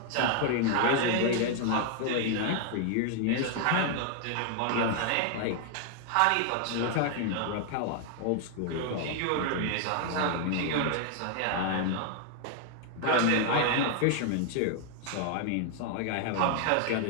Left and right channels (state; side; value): different; both; correlation 0.00